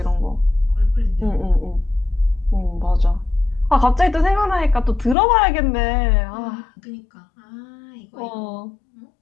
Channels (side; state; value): right; drops out; at 5.2 s